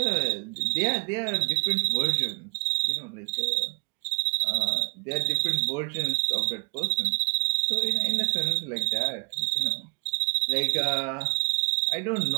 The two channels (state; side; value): quieter; left; 37.6 dB